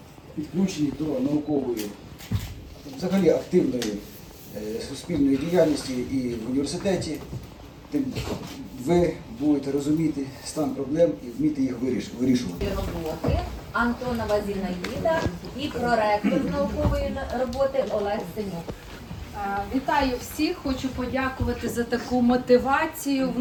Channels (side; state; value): both; identical; correlation 1.00